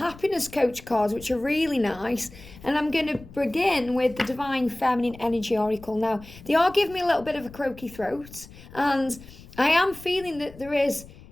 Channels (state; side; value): noise; left; rumble, 19 dB below the sound